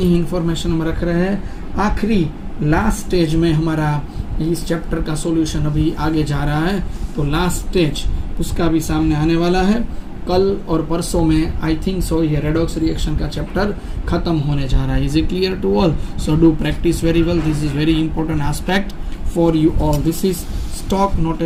ही इंफॉर्मेशन हम रख रहे हैं। आखिरी लास्ट स्टेज में हमारा इस चैप्टर का सॉल्यूशन अभी आगे जा रहा है, तो लास्ट स्टेज उसका भी सामने आने वाला है। कल और परसों में आई थिंक सो ये रेडॉक्स रिएक्शन का चैप्टर खत्म होने जा रहा है। Is it clear to all? So do practice very well, this is very important aspect for you all. This is stock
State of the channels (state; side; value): identical; both; correlation 1.00